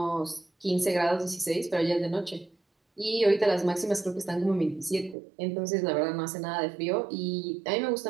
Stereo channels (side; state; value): left; drops out; at 5.2 s